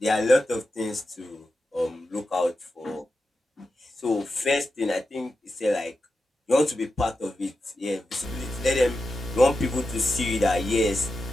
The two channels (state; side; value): normal; both; correlation 0.90